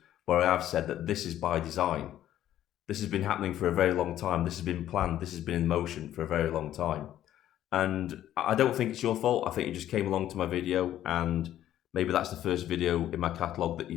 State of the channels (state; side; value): quieter; right; 12.1 dB